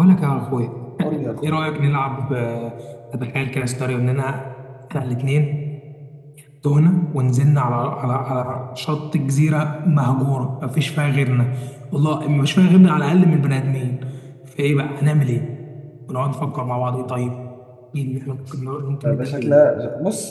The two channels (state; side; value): identical; both; correlation 1.00